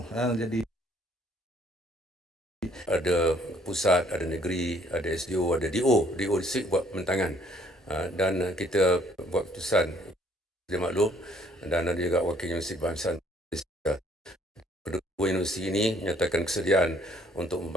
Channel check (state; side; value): normal; both; correlation 0.62